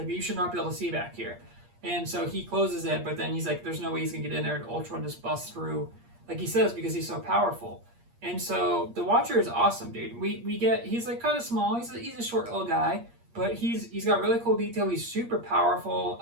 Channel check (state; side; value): late; left; 8.5 ms